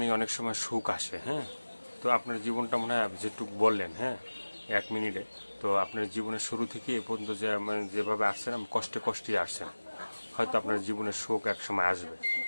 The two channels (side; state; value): both; inverted; correlation -1.00